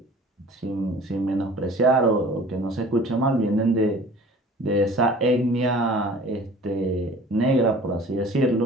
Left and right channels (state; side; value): normal; both; correlation 0.46